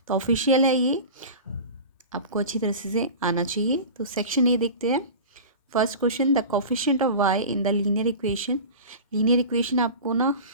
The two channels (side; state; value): both; inverted; correlation -0.33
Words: तो ऑफिशियल है ये, आपको अच्छी तरह से आना चाहिए। तो सेक्शन ए देखते हैं। First question, the coefficient of y in the linear equation. Linear equation आपको ना